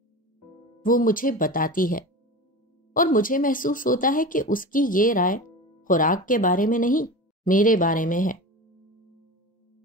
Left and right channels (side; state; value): both; normal; correlation 0.30